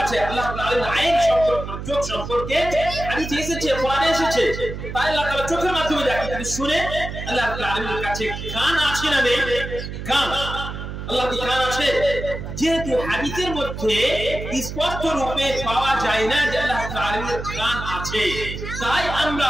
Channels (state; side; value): noise; right; hum, 8 dB below the sound